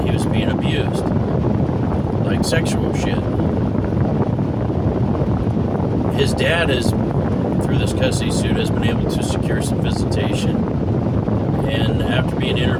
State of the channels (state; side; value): identical; both; correlation 1.00